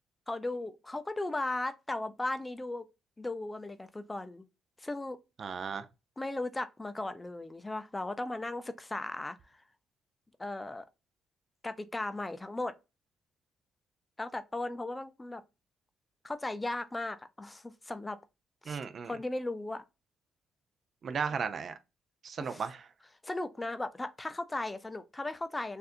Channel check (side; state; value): both; normal; correlation 0.92